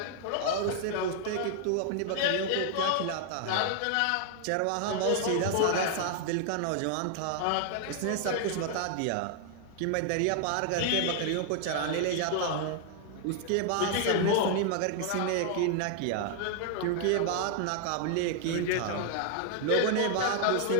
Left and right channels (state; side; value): different; both; correlation 0.00